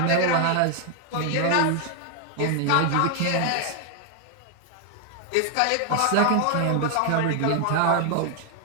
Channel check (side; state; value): both; different; correlation 0.00